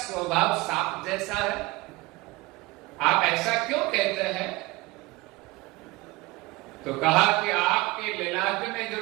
सांप जैसा है, आप ऐसा क्यों कहते हैं? तो कहा कि आपके ललाट में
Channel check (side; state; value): left; quieter; 21.8 dB